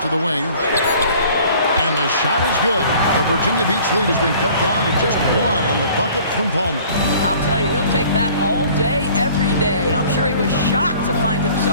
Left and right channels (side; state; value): both; inverted; correlation -0.51